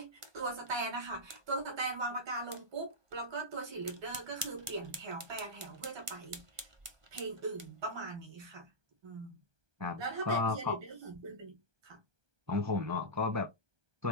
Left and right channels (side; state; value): left; late; 1.5 ms